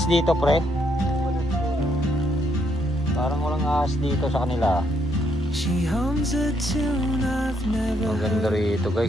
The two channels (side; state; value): both; normal; correlation 0.74